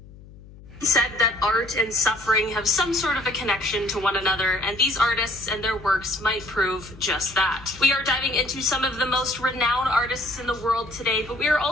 Said that art and suffering have some sort of a connection to one another, and these artists and their works might prove just that. We are diving into some of the most renowned artists in the world today, but we are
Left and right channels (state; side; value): noise; left; hum, 20 dB below the sound